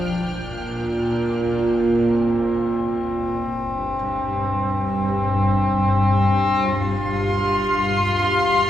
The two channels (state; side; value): normal; both; correlation 0.85